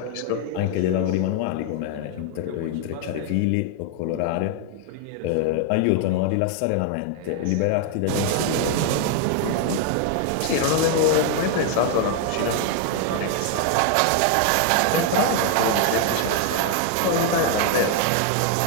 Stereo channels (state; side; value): different; both; correlation 0.00